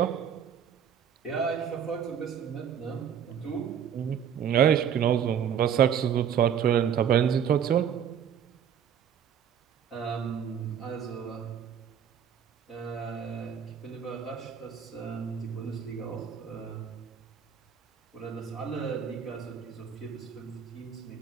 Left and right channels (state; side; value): quieter; left; 8.4 dB